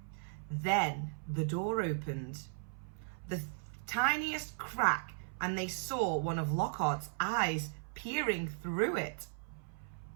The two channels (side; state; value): left; silent; 53 dB below the other